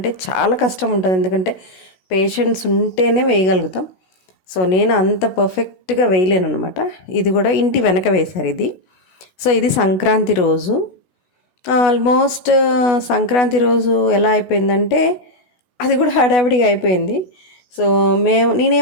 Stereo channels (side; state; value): right; late; 16 ms